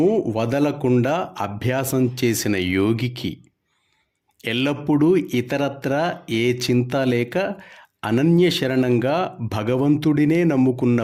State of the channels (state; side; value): identical; both; correlation 1.00